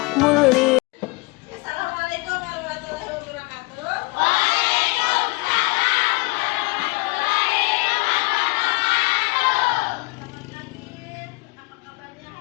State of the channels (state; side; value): quieter; right; 26.6 dB